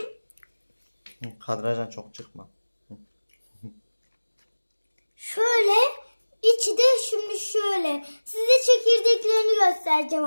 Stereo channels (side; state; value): both; inverted; correlation -1.00